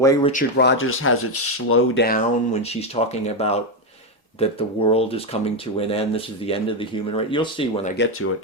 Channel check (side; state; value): both; normal; correlation 0.07